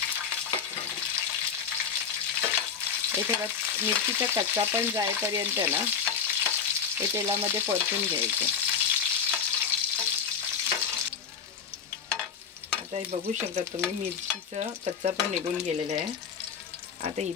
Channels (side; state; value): right; quieter; 6.8 dB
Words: हे थोडा मिरचीचा कच्चा पण जाईपर्यंत ना हे तेलामध्ये परतून घ्यायचं। आता हे बघू शकता तुम्ही, मिरचीचा कच्चा पण निघून गेलेला आहे। आता